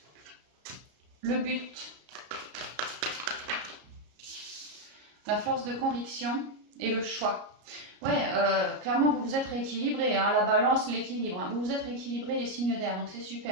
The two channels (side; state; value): left; late; 33 ms